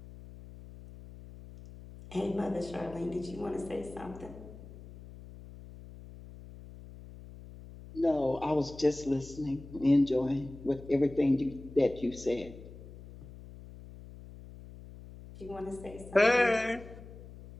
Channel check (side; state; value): left; noise; hum, 16 dB below the sound